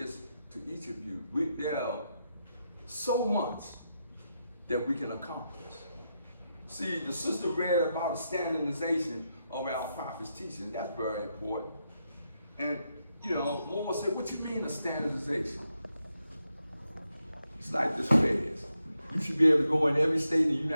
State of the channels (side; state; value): both; inverted; correlation -0.84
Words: to each of you. There are so much that we can accomplish. See, the sister read about the standardization of our prophet's teaching. That's very important. And you know, Lord said, what you mean a standardization? It's like this feds. You should be able to go in every state in the